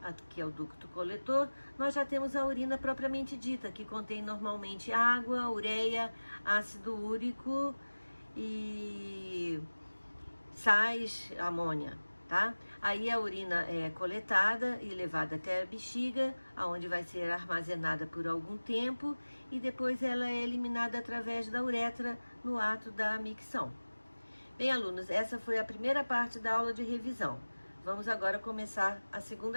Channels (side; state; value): both; inverted; correlation -1.00